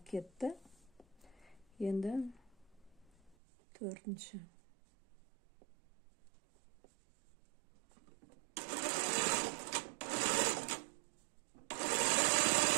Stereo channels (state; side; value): drops out; left; at 3.4 s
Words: кетті. Енді төртінші.